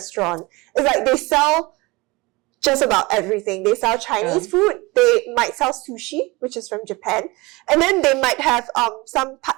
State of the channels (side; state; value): left; quieter; 23.5 dB